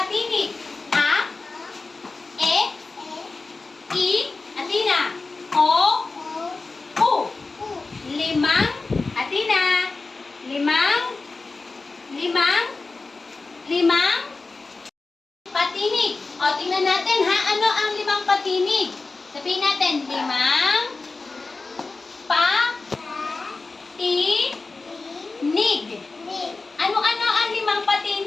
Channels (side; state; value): right; quieter; 3.8 dB